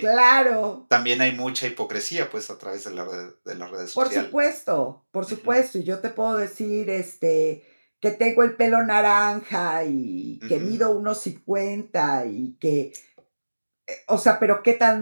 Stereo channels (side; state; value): both; inverted; correlation -1.00